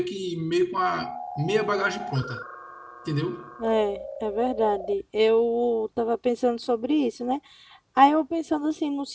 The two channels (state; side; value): identical; both; correlation 1.00